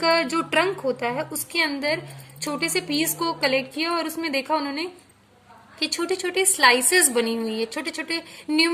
जो ट्रंक होता है उसके अंदर छोटे से पीस को कलेक्ट किया और उसमें देखा उन्होंने कि छोटे छोटे स्लाइसेस बनी हुई है. छोटे छोटे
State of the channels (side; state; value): both; identical; correlation 1.00